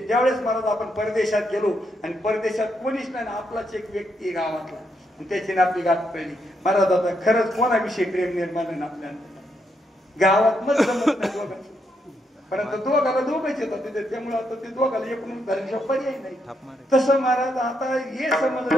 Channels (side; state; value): both; normal; correlation 0.78